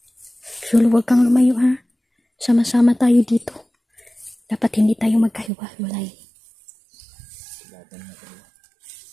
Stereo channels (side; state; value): left; drops out; at 5.5 s